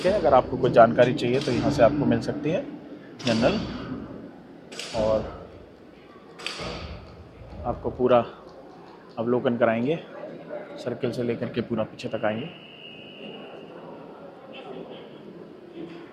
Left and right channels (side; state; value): both; identical; correlation 1.00